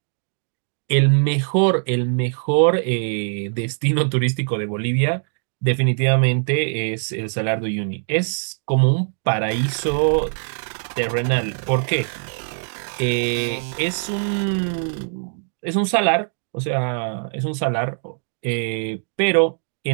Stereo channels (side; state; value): left; silent; digital silence